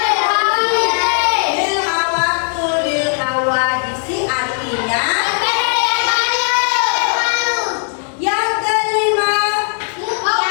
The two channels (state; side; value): silent; right; 56 dB below the other